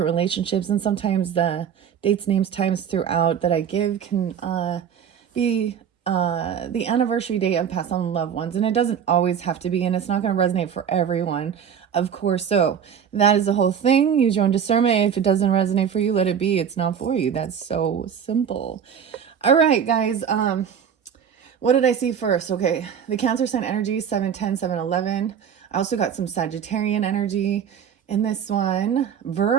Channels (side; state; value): left; quieter; 8.0 dB